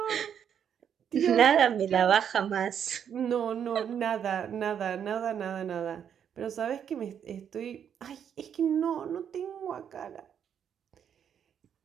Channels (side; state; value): left; quieter; 8.5 dB